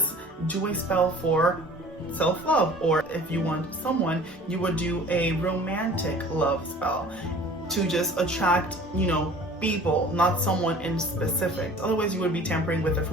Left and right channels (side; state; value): both; normal; correlation 0.46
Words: do a spell for self-love, or if you want someone, you would do a romantic love spell to just attract, people, not someone in specific. Otherwise, you would be tampering with the